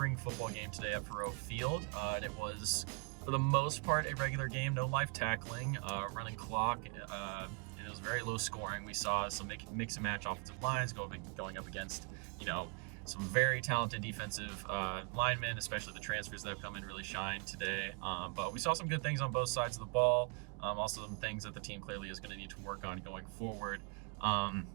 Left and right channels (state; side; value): quieter; left; 33.9 dB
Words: football game today at Faroe Field. And it was, for the most part, a regular game, no live tackling, running clock. It was very low scoring. We saw some mix and match offensive lines going up against, some very talented defensive linemen, especially the transfers that have come in really shine today. But we saw some good things on both sides of the ball. Also some things that the team clearly is going to need to work on going forward.